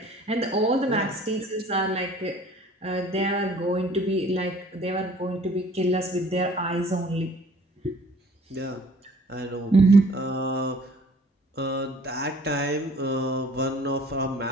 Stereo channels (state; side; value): normal; both; correlation 0.53